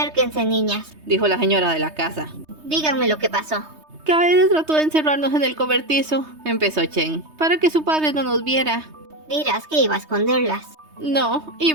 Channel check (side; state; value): left; late; 3.2 ms